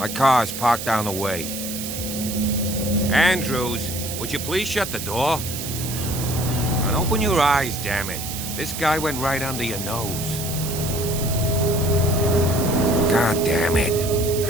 car's parked down the way. Andrews, would you please shut the door? And open your eyes, damn it. This guy went right under your nose. God damn it.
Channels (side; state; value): right; noise; hiss, 7 dB below the sound